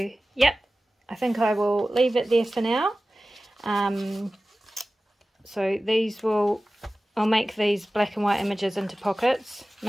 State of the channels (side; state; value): both; normal; correlation 0.96